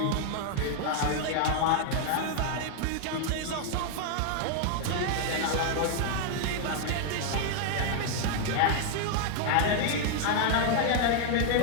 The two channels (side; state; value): both; different; correlation 0.00